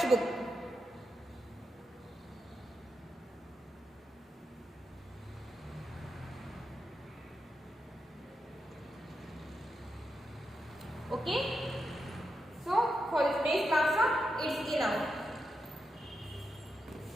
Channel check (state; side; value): normal; both; correlation 0.86